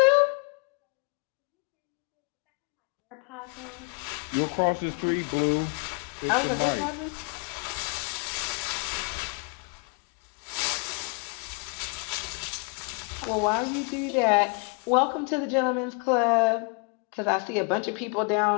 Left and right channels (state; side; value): quieter; right; 37.3 dB